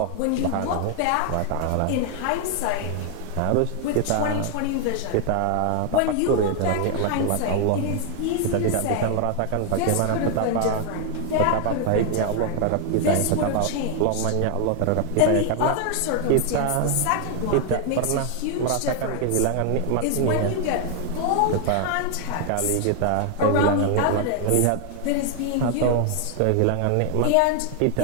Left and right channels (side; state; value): both; different; correlation 0.00